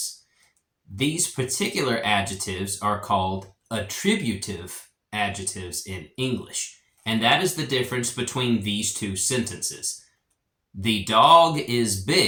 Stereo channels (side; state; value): both; identical; correlation 1.00